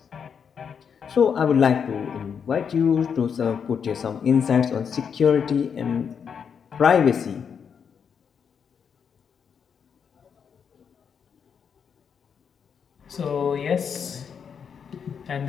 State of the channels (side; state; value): right; quieter; 7.0 dB